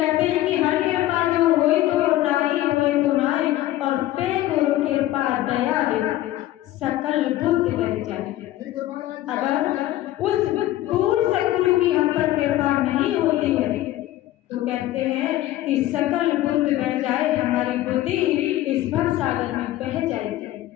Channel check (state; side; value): quieter; right; 14.8 dB